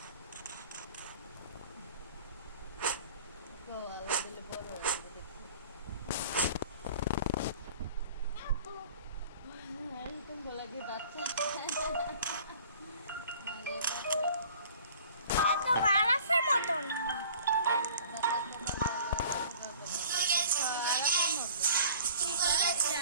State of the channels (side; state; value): both; inverted; correlation -0.49